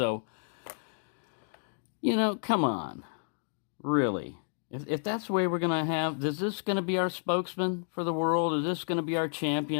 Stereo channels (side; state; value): right; silent; digital silence